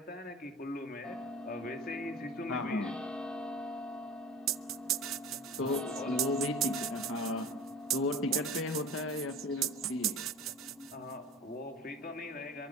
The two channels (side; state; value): both; normal; correlation 0.39